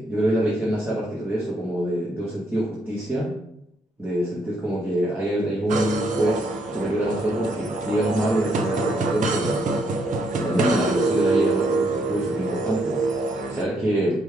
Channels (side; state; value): both; normal; correlation 0.73